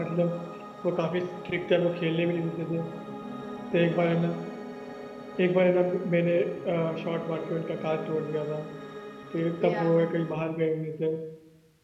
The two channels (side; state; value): both; identical; correlation 1.00